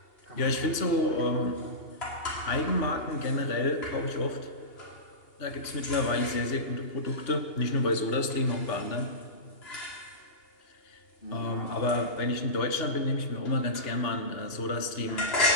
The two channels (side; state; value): right; late; 2.8 ms